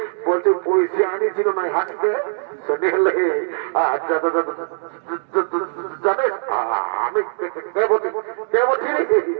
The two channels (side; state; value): left; silent; digital silence